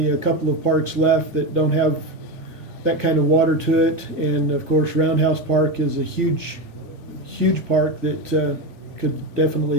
a couple of parks left that don't have that kind of water to it, and of course Roundhouse Park is a huge park that could definitely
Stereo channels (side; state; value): right; late; 3.5 ms